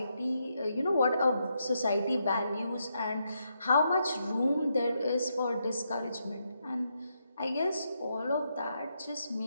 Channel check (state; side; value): inverted; both; correlation -0.81